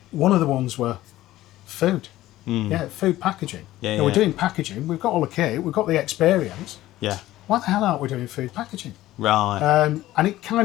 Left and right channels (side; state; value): right; quieter; 15.4 dB